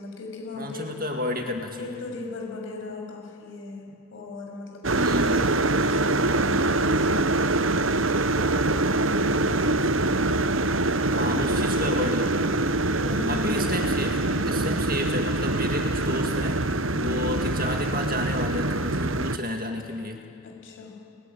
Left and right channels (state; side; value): normal; both; correlation 0.21